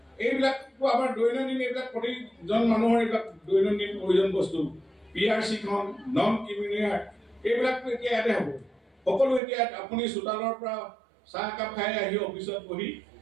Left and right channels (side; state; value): left; drops out; at 9.4 s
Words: এইবিলাকতো আমাৰ দৈনন্দিন এইবিলাক প্ৰতিজন মানুহৰ এইবিলাক দৈনন্দিন প্ৰয়োজন বস্তু PRCখন নন ক্ৰিমিনেল এইবিলাকতো এতিয়া ইয়াতে হ'ব। সকলো এতিয়া আপুনি চোতালৰ পৰা চাহ একাপ খাই আহি অফিচত বহি